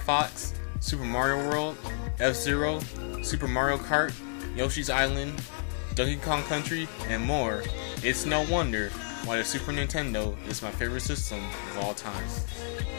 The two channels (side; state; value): right; silent; 57 dB below the other